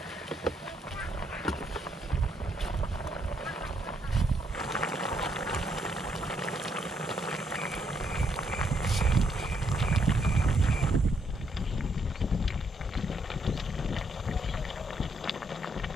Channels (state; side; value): normal; both; correlation 0.74